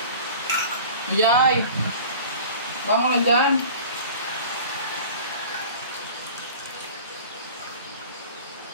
Yay! Bangon lang dyan.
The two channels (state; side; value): inverted; both; correlation -0.41